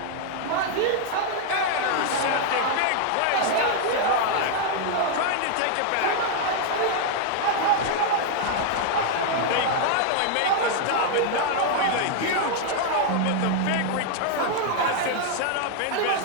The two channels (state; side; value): different; both; correlation 0.00